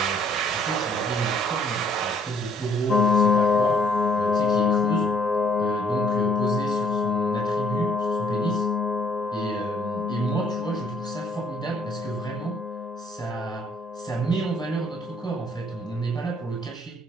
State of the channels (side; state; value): both; normal; correlation 0.63